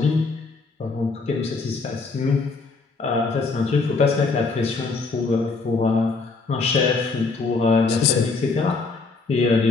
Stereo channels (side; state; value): right; quieter; 4.1 dB